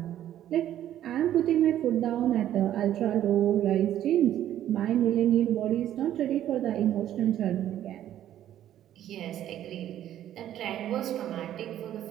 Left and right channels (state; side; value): quieter; left; 11.8 dB